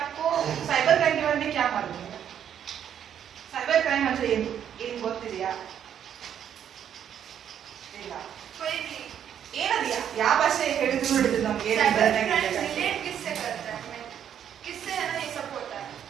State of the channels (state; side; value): quieter; left; 9.3 dB